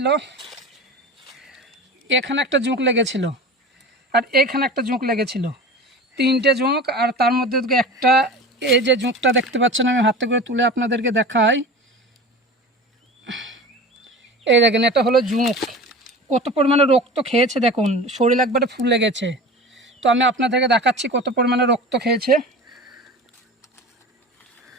এখানে একটা জুঁক লেগেছিল, আর এখানে একটা জুঁক লেগেছিল, 3টে জুঁক। আর তার মধ্যে একটা, এই যে জুঁকটা দেখতে পাচ্ছেন, আমি হাতে করে তুলে আপনাদেরকে দেখাই। এই দেখেন, এটা হলো জুঁক। কত পরিমাণে রক্ত খেয়েছে দেখুন, শরীর একবারে ফুলে গেছে। তো আমি আপনাদেরকে দেখাচ্ছি কত পরিমাণে রক্ত খেয়েছে।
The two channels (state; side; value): normal; both; correlation 0.34